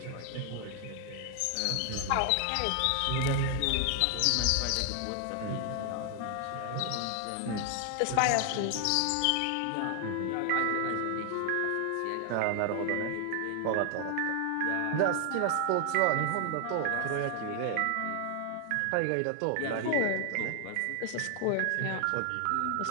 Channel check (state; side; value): different; both; correlation 0.00